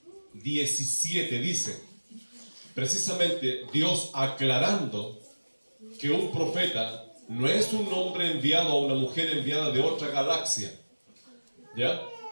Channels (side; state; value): both; inverted; correlation -1.00